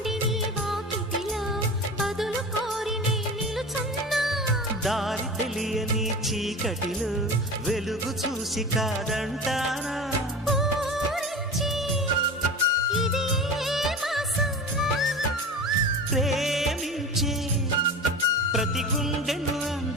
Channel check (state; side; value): normal; both; correlation 0.32